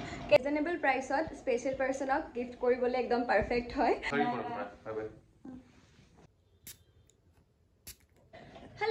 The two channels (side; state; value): both; identical; correlation 1.00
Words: ৰিজনেবল প্ৰাইসত স্পেশাল পাৰ্সনক গিফট কৰিবলে একদম পাৰফেক্ট হয়